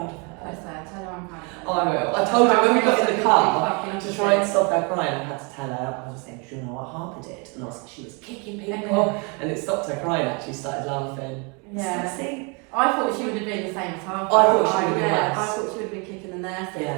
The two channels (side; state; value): left; quieter; 32.4 dB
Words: of her. Bless her. Tell her I'm proud of her. Oh, I will. I told her when we got in the car to to try and stop her crying, I had to tell her, I was saying, do you know what Harper did? And I was like, she was kicking people. And it stopped her crying, actually started laughing. Yeah. See? I thought she would have been the same as Harper. I thought she would have been yeah, worse. I thought she would have been kicking the nurses.